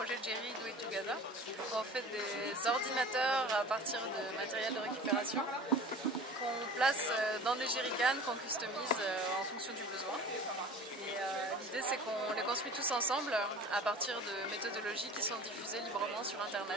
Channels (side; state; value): both; normal; correlation 0.41